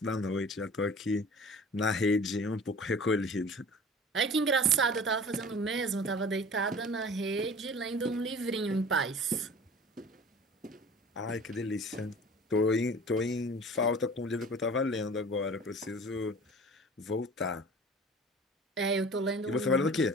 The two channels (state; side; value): normal; both; correlation 0.42